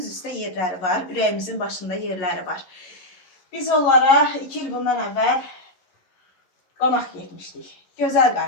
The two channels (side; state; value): right; late; 11 ms